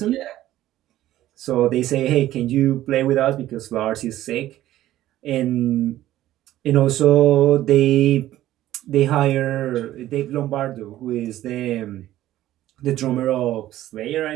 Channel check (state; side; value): quieter; left; 14.1 dB